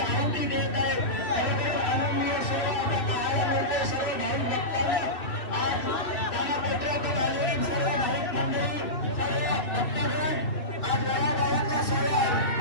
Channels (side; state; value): right; late; 2.6 ms